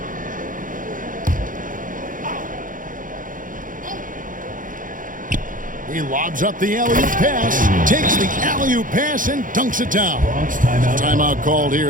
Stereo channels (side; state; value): left; late; 0.39 ms